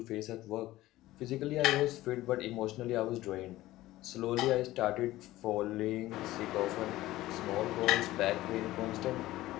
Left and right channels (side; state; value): right; quieter; 16.5 dB